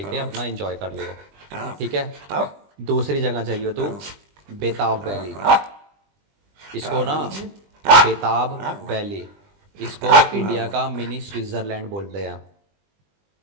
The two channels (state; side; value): late; left; 20 ms